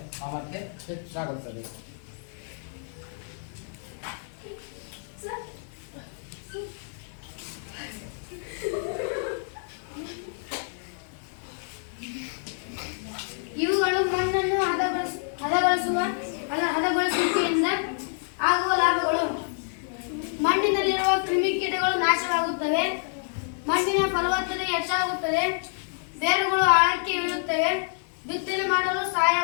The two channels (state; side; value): silent; right; digital silence